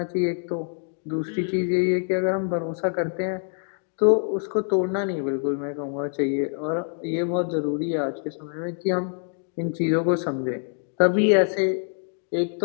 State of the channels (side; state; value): right; silent; 58 dB below the other